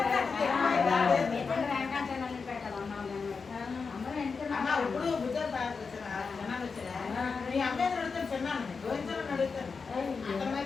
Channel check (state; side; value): quieter; right; 5.0 dB